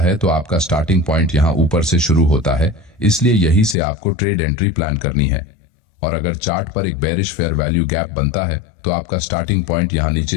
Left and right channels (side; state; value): right; drops out; at 3.8 s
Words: है तो आपका स्टार्टिंग पॉइंट यहां ऊपर से शुरू होता है, इसलिए यही से आपको ट्रेड एंट्री प्लान करनी है। और अगर चार्ट पर एक बेरिश फेयर वैल्यू गैप बनता है तो आपका स्टार्टिंग पॉइंट यहां